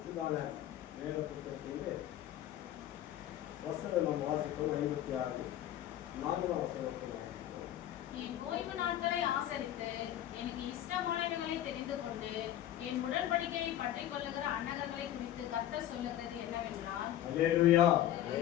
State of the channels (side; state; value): right; quieter; 12.3 dB